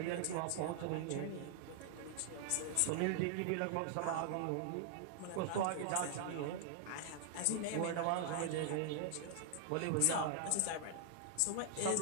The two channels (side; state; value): both; different; correlation 0.00